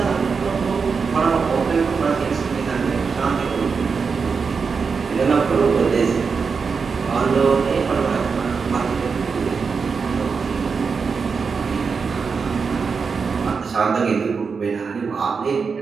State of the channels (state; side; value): quieter; left; 5.3 dB